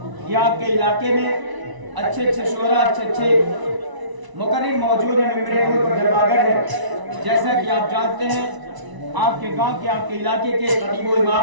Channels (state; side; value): late; left; 1.0 ms